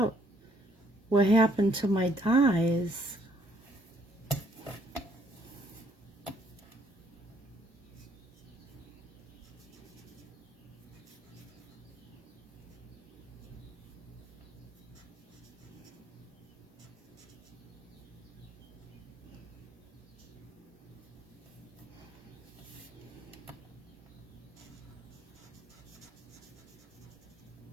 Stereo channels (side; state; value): both; normal; correlation 0.66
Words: what happened to my dies.